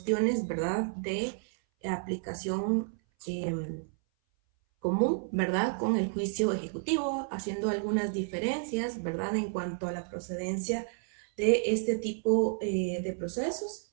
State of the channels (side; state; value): left; silent; 57 dB below the other